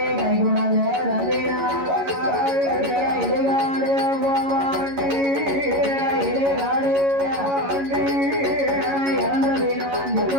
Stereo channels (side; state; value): left; late; 11 ms